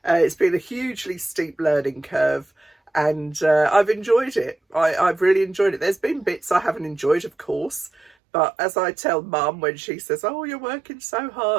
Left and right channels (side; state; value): left; drops out; at 8.1 s